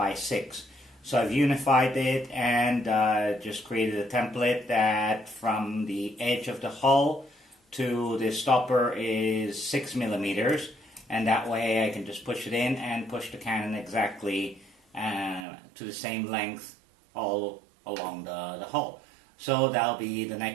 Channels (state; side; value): drops out; left; at 15.5 s